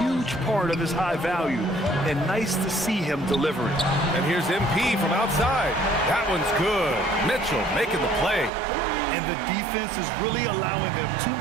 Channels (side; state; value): left; drops out; at 8.5 s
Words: part of his high value. And nice to see him deliver it. And here's MP from outside. That one's good. Mitchell making the play. And the defense is really allowing them too